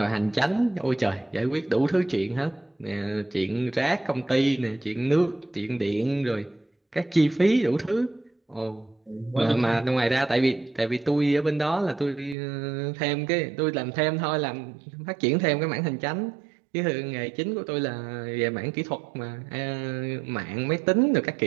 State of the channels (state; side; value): drops out; left; at 12.4 s